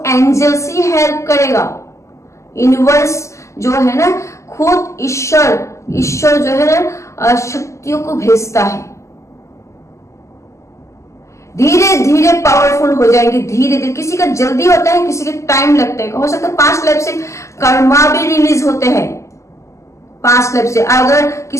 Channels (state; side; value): late; right; 0.14 ms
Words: एंजल्स ही हेल्प करेगा, यूनिवर्स जो है ना, खुद ईश्वर जो है ना शक्तियों को भेजता है। धीरे धीरे पावरफुल हो जाएंगे, धीरे धीरे। किसी का जल्दी होता है, किसी का टाइम लगता है। हो सकता है 5 लाइफ से कर्मा भी रिलीज होते हैं, 5 लाइफ से। अगर